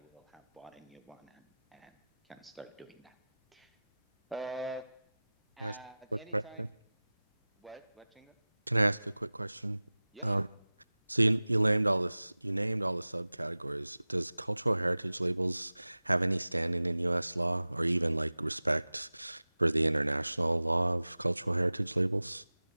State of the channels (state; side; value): inverted; both; correlation -0.98